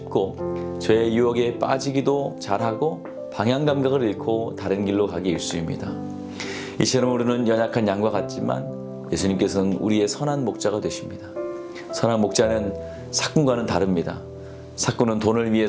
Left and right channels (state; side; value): identical; both; correlation 1.00